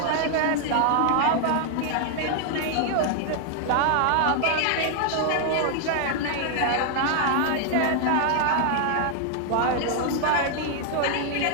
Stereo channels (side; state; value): both; different; correlation 0.00